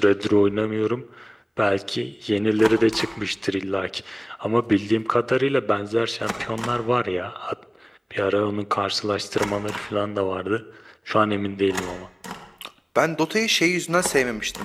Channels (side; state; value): both; identical; correlation 1.00